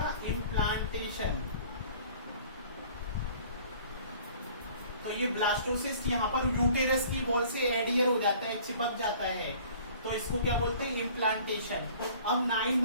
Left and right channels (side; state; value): both; inverted; correlation -0.51